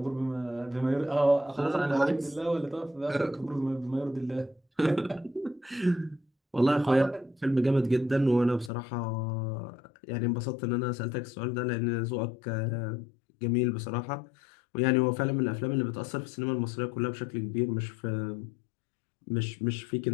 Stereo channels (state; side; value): drops out; right; at 8.7 s